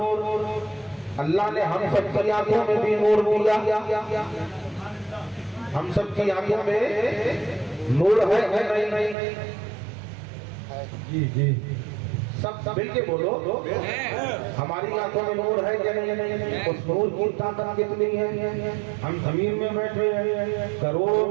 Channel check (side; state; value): left; drops out; at 9.2 s